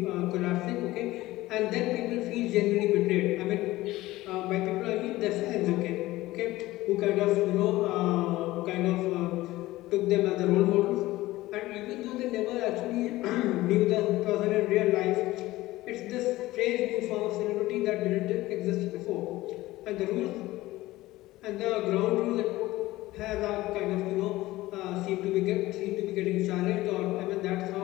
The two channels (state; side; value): quieter; right; 17.6 dB